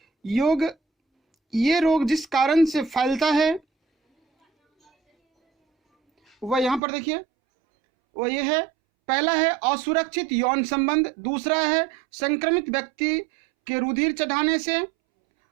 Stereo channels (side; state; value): left; drops out; at 6.8 s